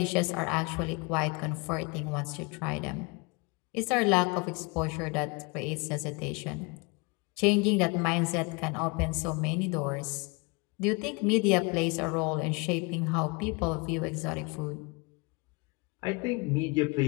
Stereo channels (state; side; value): quieter; right; 28.8 dB